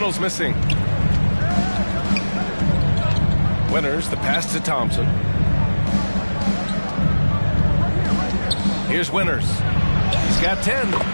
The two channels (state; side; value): inverted; both; correlation -1.00